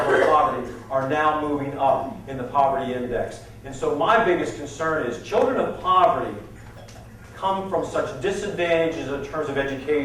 of poverty are now moving up in the poverty index. And so my biggest concern is children of poverty come from such disadvantages in terms of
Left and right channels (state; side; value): identical; both; correlation 1.00